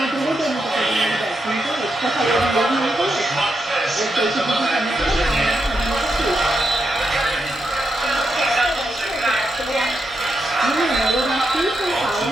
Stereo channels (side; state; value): both; normal; correlation 0.84